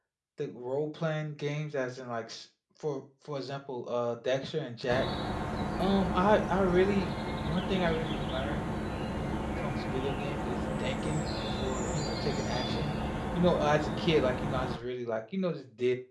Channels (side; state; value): both; identical; correlation 1.00